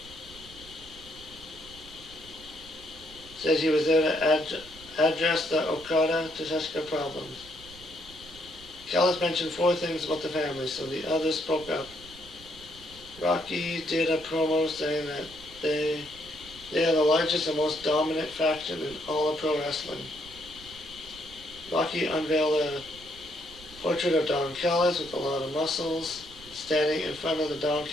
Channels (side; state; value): right; noise; rumble, 20 dB below the sound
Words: to address the Okada-Takeshita problems. Callis mentioned 4 things about the family, so the others spoke up. Rocky did a promo saying that they are the largest and most dominant faction in all of pro wrestling. Rocky unveiled a portrait of Don Callis with a lot of muscles, standing in front of the Don